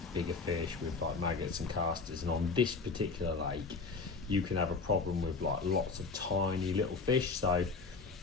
bigger fish with like maggots and casters. And on this particular lake you can have a problem with like lots of tiny little fish, so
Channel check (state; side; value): quieter; right; 4.4 dB